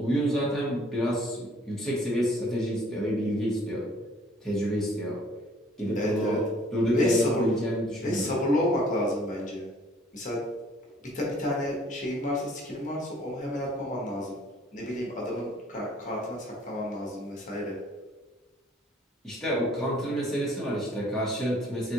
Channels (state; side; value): normal; both; correlation 0.57